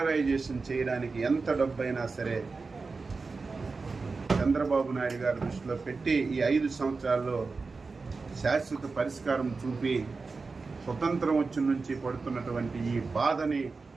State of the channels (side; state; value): left; quieter; 4.2 dB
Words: చేయడానికి ఎంత డబ్బైనా సరే చంద్రబాబు నాయుడు గారి దృష్టిలో పెట్టి ఈ 5 సంవత్సరాల్లో శాశ్వత పరిష్కారం చూపి స్వతంత్రం వచ్చి నుంచి పడుతున్నటువంటి ఈ బాధని